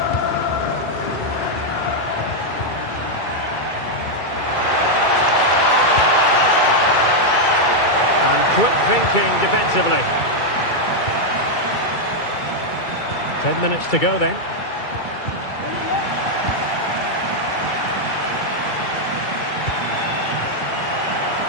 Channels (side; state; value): right; late; 2.3 ms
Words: And quick thinking defensively. 10 minutes to go then.